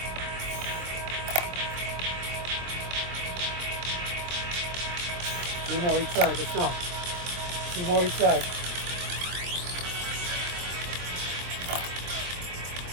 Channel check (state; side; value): late; left; 24 ms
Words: Two more each side. Let's go. Two more each side.